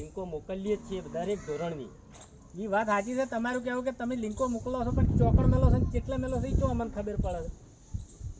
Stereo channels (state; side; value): identical; both; correlation 1.00